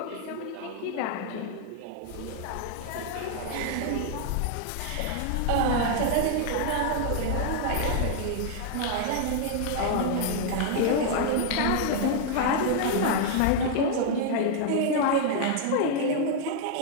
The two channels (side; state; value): both; different; correlation 0.00